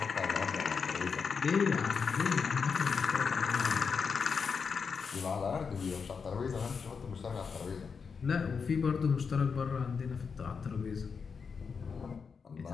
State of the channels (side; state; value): right; quieter; 5.7 dB